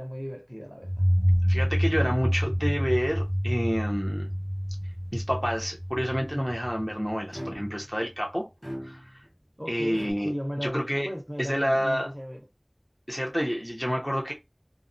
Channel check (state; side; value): identical; both; correlation 1.00